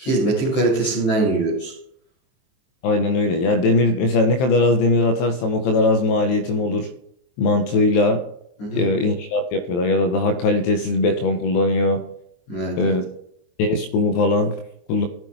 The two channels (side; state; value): right; late; 23 ms